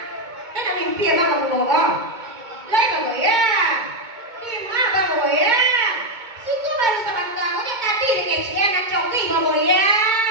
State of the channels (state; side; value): late; left; 2.2 ms